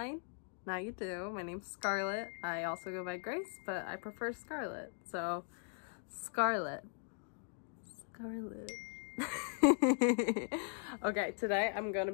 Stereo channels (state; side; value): silent; right; 52 dB below the other